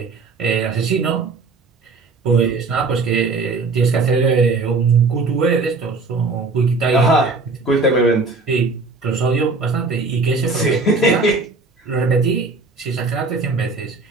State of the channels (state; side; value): quieter; left; 3.9 dB